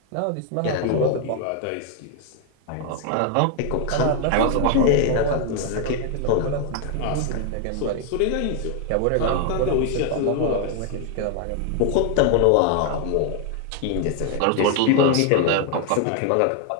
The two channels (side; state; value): both; different; correlation 0.00